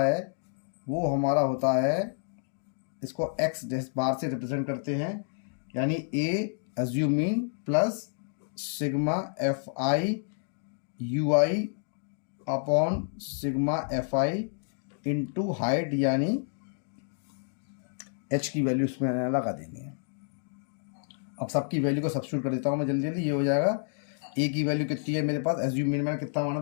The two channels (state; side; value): silent; right; digital silence